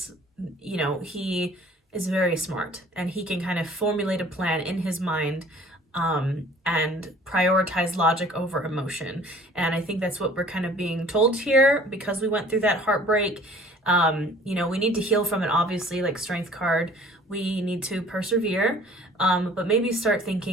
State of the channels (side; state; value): both; normal; correlation 0.50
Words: you know, he is very smart and he can kind of formulate a plan in his mind and prioritize logic over emotion. And I think that's what we're kind of being told here because we went through that heartbreak. You know, we need to heal from it, obviously, like Strength card. We need to persevere, but maybe start